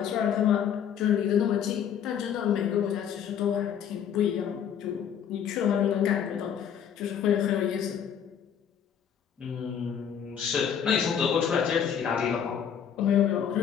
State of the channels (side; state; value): right; quieter; 8.4 dB